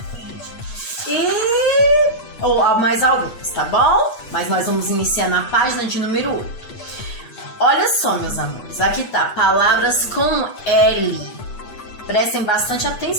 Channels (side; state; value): right; late; 8.3 ms